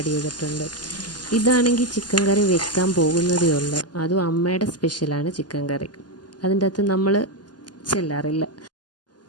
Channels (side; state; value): right; late; 0.70 ms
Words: ചെയ്തിട്ടുണ്ട്. ഇതാണെങ്കിൽ ചിക്കൻ കറി വെക്കാൻ പോകുന്നതേ ഉള്ളൂ. അതും അമ്മയുടെ സ്പെഷ്യലാണ് ചിക്കൻ കറി. അതിൻ്റെ അകത്ത് നമ്മൾ ചെല്ലാറില്ല.